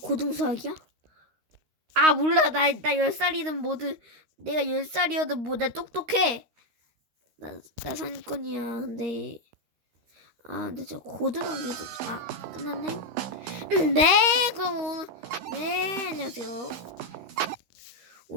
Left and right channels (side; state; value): left; late; 13 ms